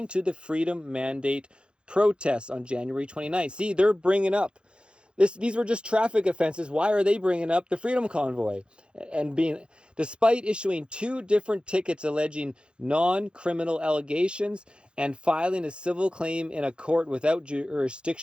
to the Freedom Mandate protests on January 29th. See, they're bringing up These were just traffic offenses. Why are they bringing up the Freedom Convoy? And despite issuing 2 different tickets alleging non-criminal allegations and filing a civil claim in a court without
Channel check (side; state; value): left; late; 0.054 ms